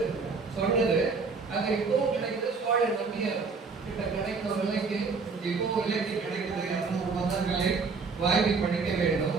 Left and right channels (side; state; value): left; quieter; 4.6 dB